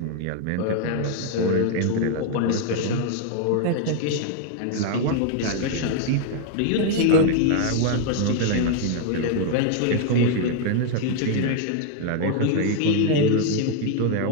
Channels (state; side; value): different; both; correlation 0.00